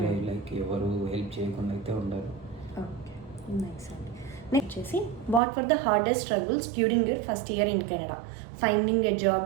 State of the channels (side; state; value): left; drops out; at 5.4 s